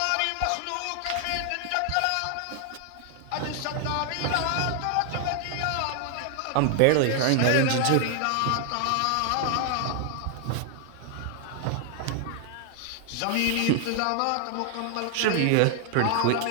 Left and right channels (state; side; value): different; both; correlation 0.00